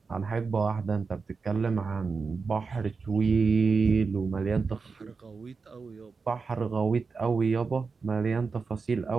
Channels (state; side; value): quieter; left; 4.7 dB